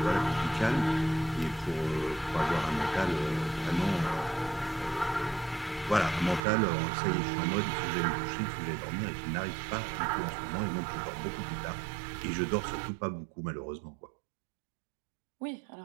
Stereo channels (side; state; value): left; drops out; at 6.4 s